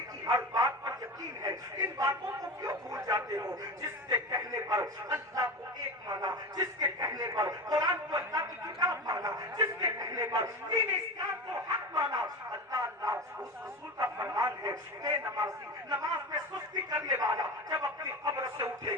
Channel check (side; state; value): both; normal; correlation 0.26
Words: کی ہر بات پر یقین ہے، ان باتوں کو کیوں بھول جاتے ہو؟ جس کے کہنے پر اللہ کو ایک مانا، جس کے کہنے پر قرآن کو اللہ کی کتاب مانا، جس کے کہنے پر دین اسلام کو حق مانا، اللہ اس رسول کا فرمان ہے بے نمازی، نماز میں سستی کرنے والا جب اپنی قبر سے اٹھے